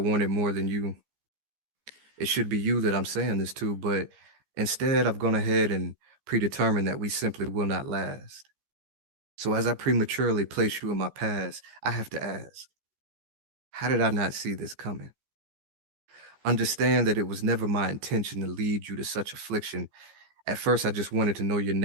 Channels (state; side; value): late; left; 14 ms